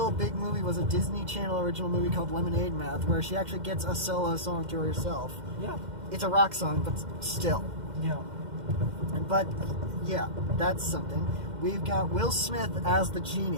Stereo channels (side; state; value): left; late; 2.1 ms